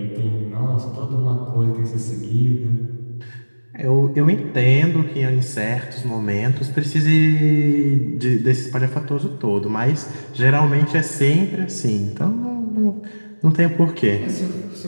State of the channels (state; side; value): inverted; both; correlation -1.00